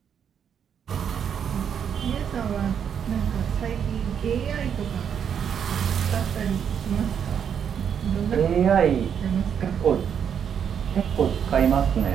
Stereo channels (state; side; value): quieter; left; 7.9 dB